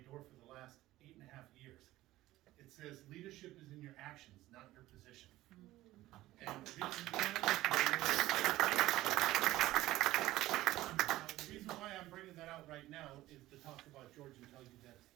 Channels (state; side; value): quieter; left; 16.2 dB